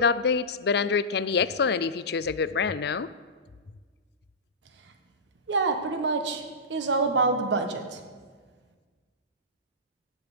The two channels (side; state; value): both; normal; correlation -0.19